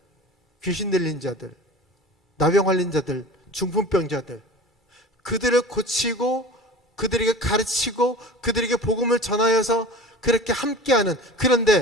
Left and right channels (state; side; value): normal; both; correlation 0.37